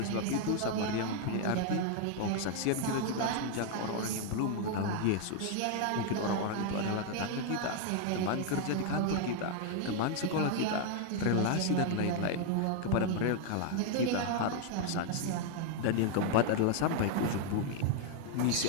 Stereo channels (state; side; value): different; both; correlation 0.00